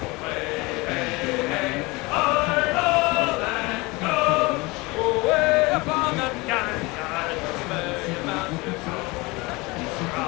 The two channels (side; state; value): right; quieter; 24.1 dB